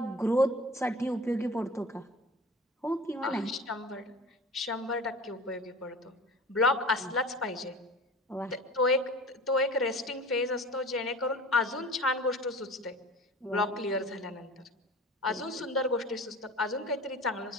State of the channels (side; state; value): both; normal; correlation 0.38